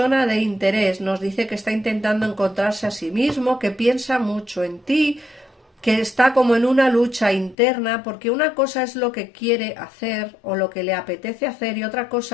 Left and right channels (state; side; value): drops out; right; at 7.6 s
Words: de interés. Nos dice que está intentando encontrarse a sí mismo, que piensa mucho en ti, que está como en una lucha interna, porque una cosa es lo que quiere hacer o lo que le apetece hacer y otra